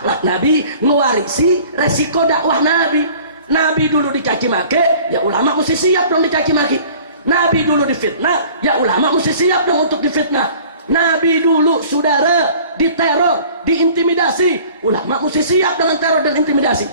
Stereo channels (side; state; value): both; inverted; correlation -0.49